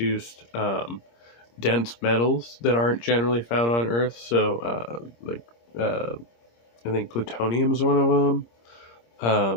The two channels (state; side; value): late; right; 26 ms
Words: dense metals that aren't generally found on Earth. So, I think plutonium is one of them.